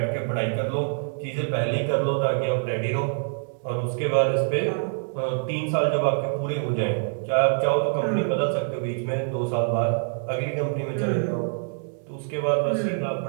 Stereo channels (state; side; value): silent; left; digital silence